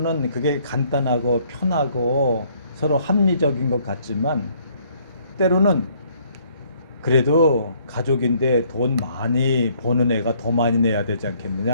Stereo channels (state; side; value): inverted; both; correlation -0.64